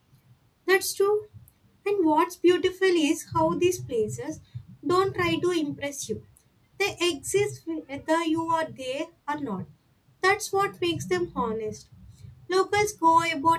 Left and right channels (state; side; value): identical; both; correlation 1.00